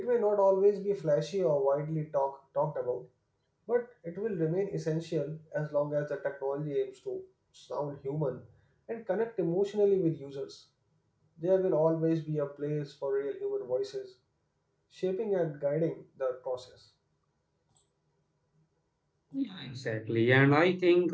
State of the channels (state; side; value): identical; both; correlation 1.00